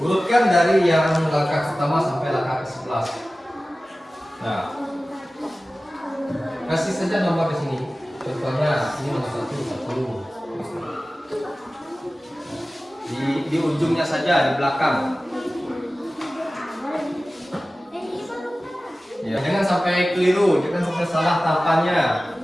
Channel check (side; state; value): both; normal; correlation 0.96